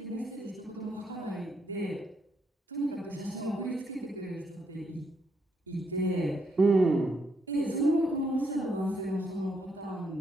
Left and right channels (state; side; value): normal; both; correlation 0.75